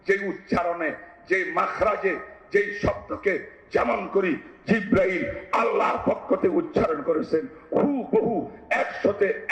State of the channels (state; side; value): identical; both; correlation 1.00